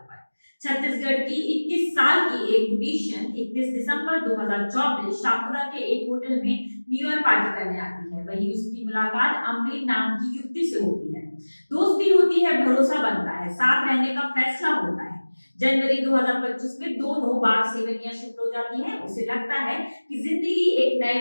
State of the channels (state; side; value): inverted; both; correlation -1.00